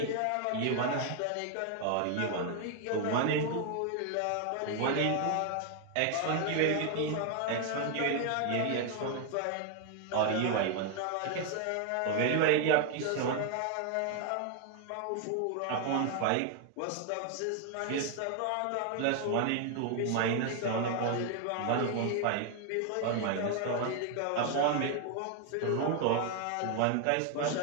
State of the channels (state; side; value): different; both; correlation 0.01